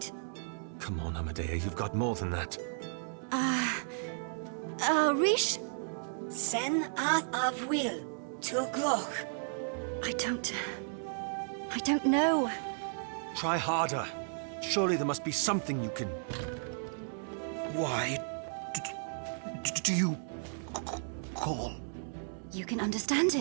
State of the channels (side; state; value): left; silent; digital silence